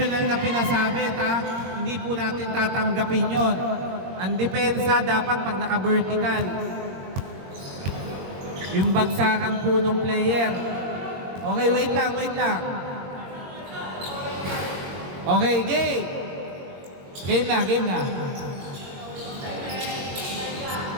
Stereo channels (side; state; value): left; late; 22 ms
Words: na pinasabit ha. Hindi po natin tatanggapin yon. Ang depensa dapat pag naka-vertical. Yung bagsakan po ng player. Okay, wait lang. Okay, game. Game na.